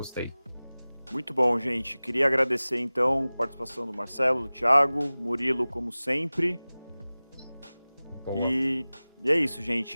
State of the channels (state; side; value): inverted; both; correlation -0.98